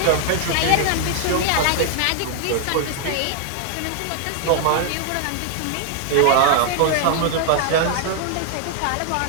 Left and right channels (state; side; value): different; both; correlation -0.01